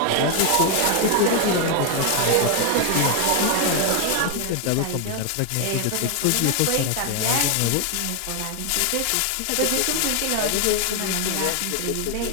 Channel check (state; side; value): different; both; correlation 0.00